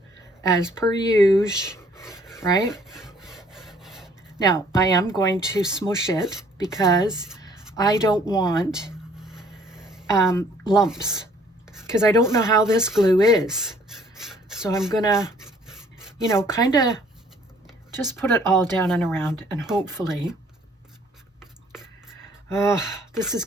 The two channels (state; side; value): normal; both; correlation 0.59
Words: as per usual, right? Now, I am going to smush it because I don't want lumps because I don't know how this glue is. So I'm going to, you know, kind of just put it all down and around, and hopefully, this is